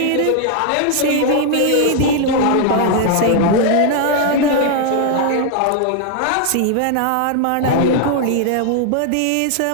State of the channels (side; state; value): both; different; correlation 0.00